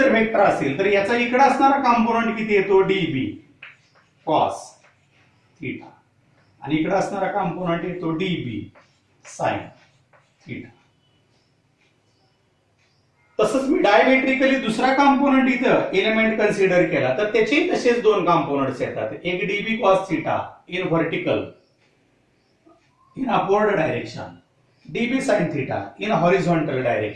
वेक्टर असेल तर याचा इकडे असणारा कंपोनेंट किती येतो dB cos थीटा आणि इकडे असणारा कंपोनेंट येतो dB sin थीटा. तसंच मी डायमेट्रिकली दुसरा कंपोनेंट इथं एलिमेंट कन्सिडर केला तर त्याचे तसेच दोन कंपोनेंट्स येतात. एक dB cos theta in vertical in upward direction, dB sin theta in horizontal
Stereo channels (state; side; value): identical; both; correlation 1.00